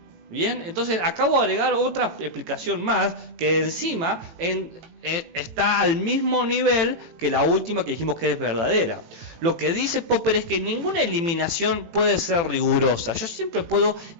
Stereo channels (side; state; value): left; late; 18 ms